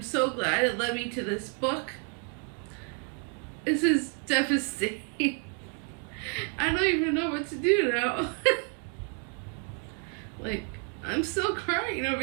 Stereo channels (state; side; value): quieter; left; 39.4 dB